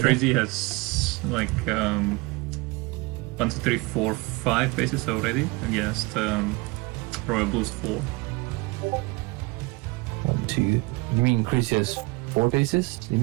Crazy has like 1, 2, 3, 4, 5 bases already against Royal Blue's 4. 1, 2. You mean Crazy has 4 bases? You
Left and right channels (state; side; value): quieter; left; 24.5 dB